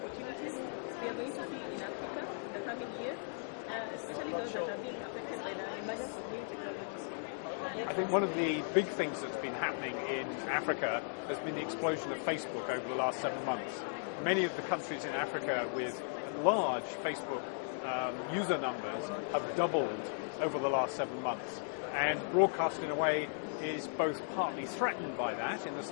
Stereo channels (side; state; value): right; silent; digital silence